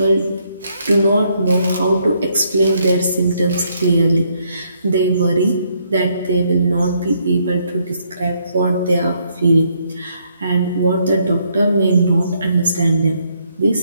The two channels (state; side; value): inverted; both; correlation -0.72